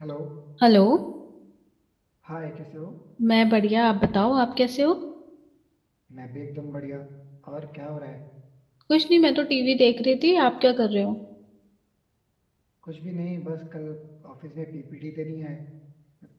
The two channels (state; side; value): identical; both; correlation 1.00